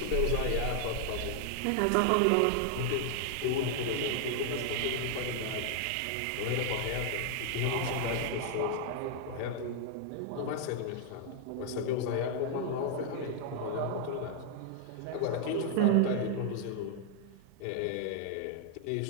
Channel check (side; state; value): both; different; correlation 0.00